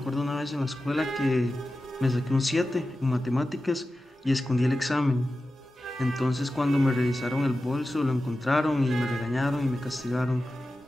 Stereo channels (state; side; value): normal; both; correlation 0.93